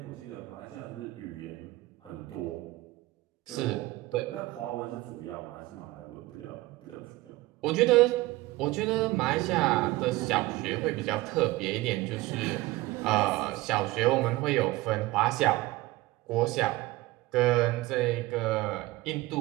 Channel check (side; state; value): left; quieter; 19.1 dB